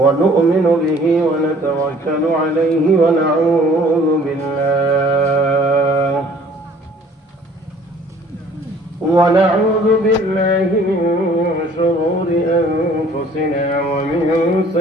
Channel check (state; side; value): normal; both; correlation 0.55